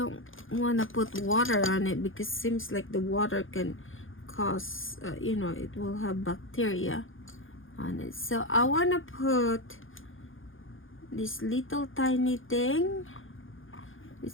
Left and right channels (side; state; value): right; late; 0.58 ms